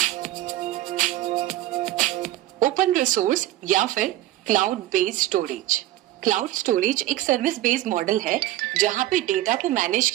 रिसोर्स या फिर cloud based storage. Cloud storage एक सर्विस बेस्ड मॉडल है जहां पे डेटा को मैनेज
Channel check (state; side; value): quieter; left; 15.0 dB